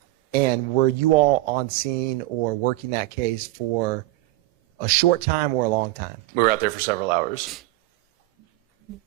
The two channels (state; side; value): quieter; left; 18.0 dB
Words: And were you all on scene or working that case for a short time or a long time? We were out there for several hours.